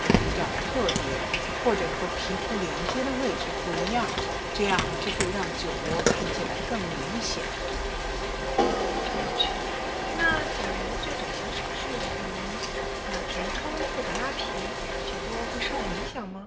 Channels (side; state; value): both; identical; correlation 1.00